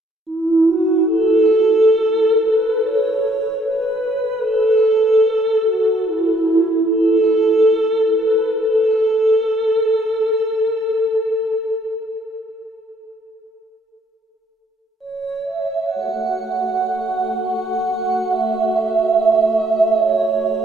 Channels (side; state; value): both; normal; correlation 0.67